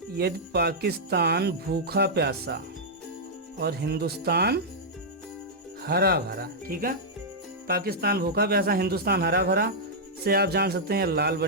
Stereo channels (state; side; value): normal; both; correlation -0.08